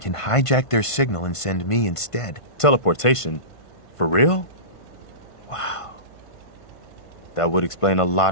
can hijack their signal and send me instead. Teleportation? For real? Wow. That would explain a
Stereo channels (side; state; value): right; late; 1.5 ms